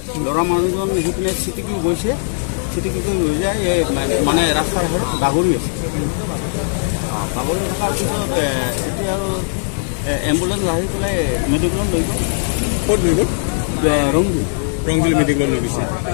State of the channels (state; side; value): silent; right; digital silence